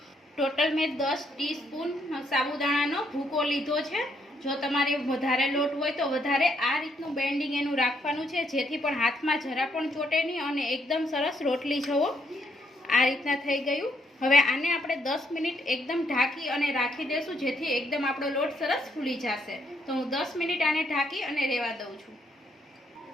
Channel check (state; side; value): normal; both; correlation 0.73